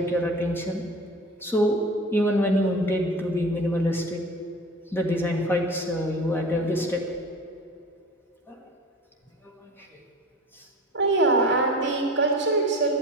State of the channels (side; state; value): both; normal; correlation 0.37